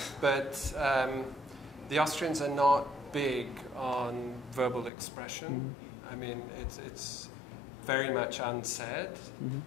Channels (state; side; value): drops out; right; at 4.9 s